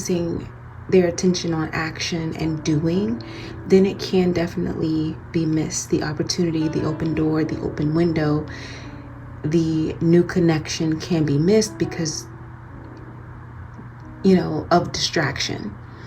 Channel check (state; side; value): identical; both; correlation 1.00